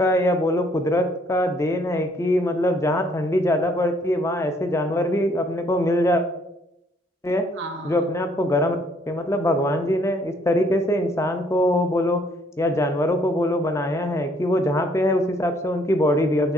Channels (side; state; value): both; normal; correlation 0.64